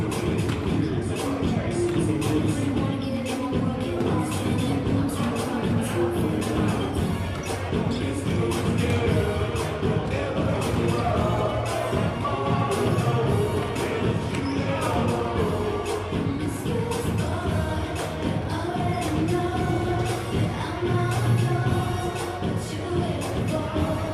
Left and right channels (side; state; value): both; identical; correlation 1.00